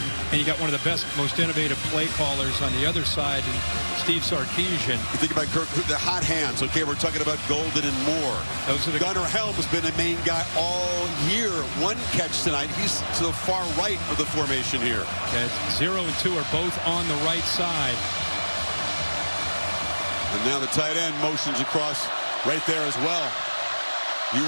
and you got one of the best, most innovative play callers on the other side, in Steve Sarkisian. You think about Kirk, the hot hands. Okay, we're talking about Golden and Moore. Those are the Gunnar Helm has been a main guy all year. One catch tonight. He's to the far right of the formation here. Yeah, 0 and 2 are both on the right side. And now the tight end motions across right there as well.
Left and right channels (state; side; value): inverted; both; correlation -1.00